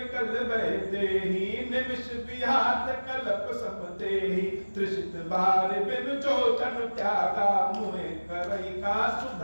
बहतेहि, निमिष विहात कल्प समतेहि, त्रिषित बार बिनु जो तन त्यागा, मुहे करई का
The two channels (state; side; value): inverted; both; correlation -1.00